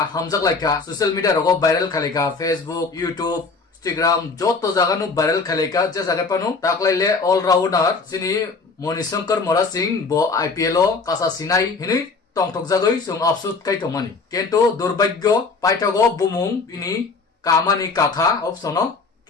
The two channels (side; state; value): right; quieter; 4.3 dB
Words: hamjak laika social media rogo viral khalika Facebook YouTube Instagram joto jaga nu viral khalika je jaga panu taklaile all rounder sini Monishankar Mora Singh bo IPL o kasa sinai hini tongtok jagoi sung afsut kai tomani kento durbagyo paitago bumung ini kamani kakha opsono